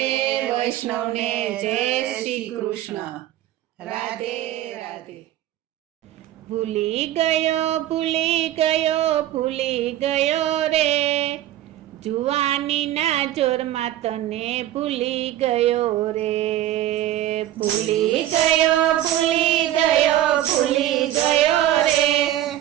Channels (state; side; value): quieter; left; 13.2 dB